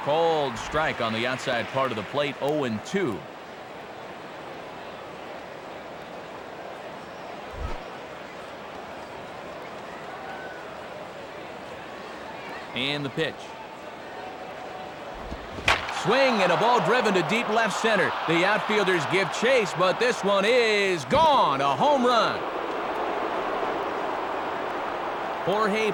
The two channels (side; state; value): both; identical; correlation 1.00